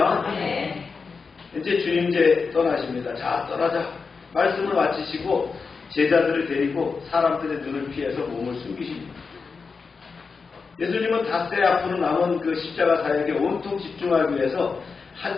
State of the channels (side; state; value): right; quieter; 4.9 dB